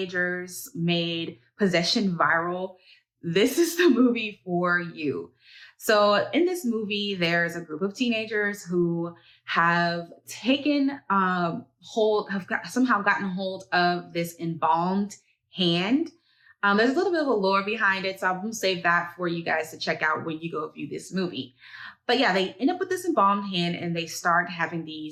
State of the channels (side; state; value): both; identical; correlation 1.00